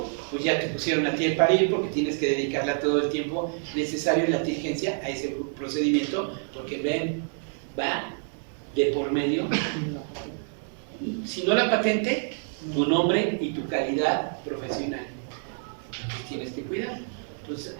pues ya te pusieron a ti el parir porque tienes que dedicarle todo el tiempo necesario y la diligencia a ese procedimiento, porque ven, va de por medio, si no la patente, tu nombre y tu calidad profesional. Entonces tienes que cuidar. Entonces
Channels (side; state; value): left; silent; 60 dB below the other